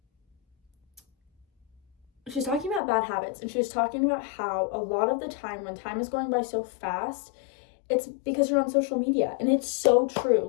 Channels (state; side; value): drops out; right; at 2.8 s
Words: she's talking about bad habits, and she was talking about how a lot of the time when time is going by so fast, it's because you're on social media. And it's so true.